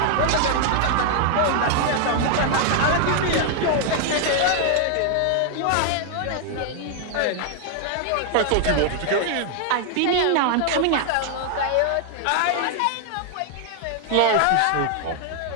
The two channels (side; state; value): both; different; correlation 0.00